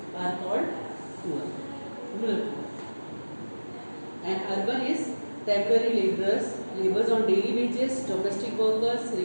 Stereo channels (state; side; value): inverted; both; correlation -1.00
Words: are called poor. Rural. And urban is temporary laborers, laborers on daily wages, domestic workers,